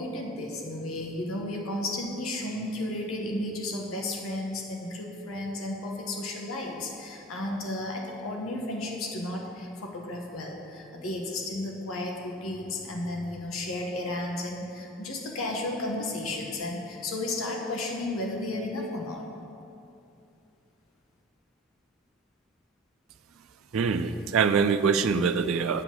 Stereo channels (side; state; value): both; normal; correlation 0.35